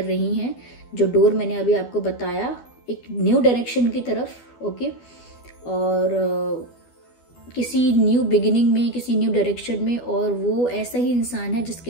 रही हैं, जो डोर मैंने अभी आपको बताया, एक न्यू डायरेक्शन की तरफ। ओके, और किसी न्यू बिगिनिंग में, किसी न्यू डायरेक्शन में, और वो ऐसा ही इंसान है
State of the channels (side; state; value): right; late; 12 ms